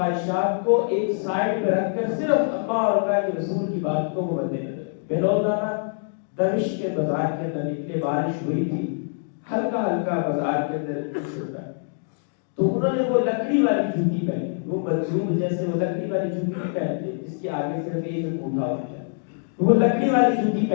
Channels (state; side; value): silent; right; digital silence